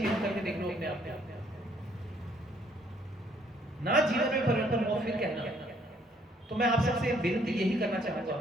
करके देख लो अपने आप ना जीवन में परिवर्तन हो, फिर कहना। तो मैं आप सबसे विनती यही करना चाहूंगा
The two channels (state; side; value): normal; both; correlation 0.65